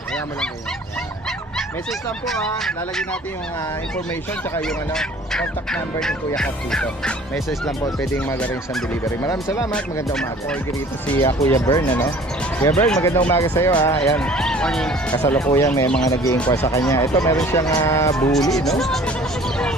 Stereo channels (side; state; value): both; normal; correlation 0.50